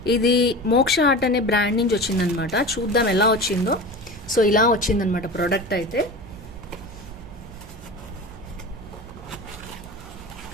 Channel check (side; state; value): right; noise; hum, 18 dB below the sound